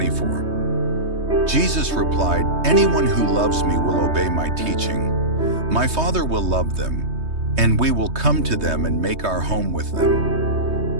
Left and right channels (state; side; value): late; left; 3.2 ms